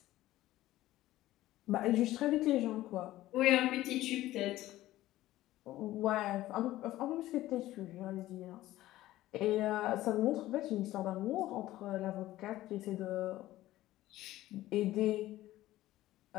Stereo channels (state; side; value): quieter; right; 15.5 dB